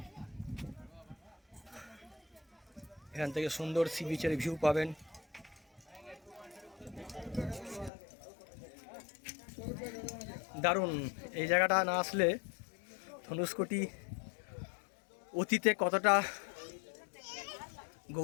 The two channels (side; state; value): right; drops out; at 7.9 s